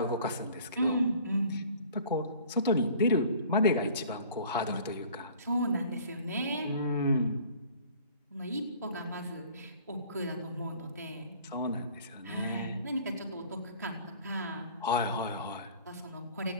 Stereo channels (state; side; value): inverted; both; correlation -0.49